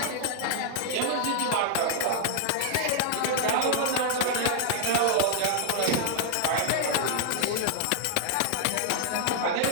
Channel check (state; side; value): different; both; correlation 0.00